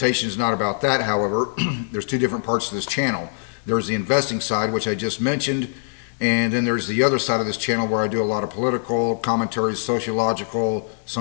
is not about that, however. There's two different parts to this channel. There's the investing side, which I just mentioned, and then there's the other side of this channel where I do a lot of political commentaries, sociological,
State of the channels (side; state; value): right; silent; digital silence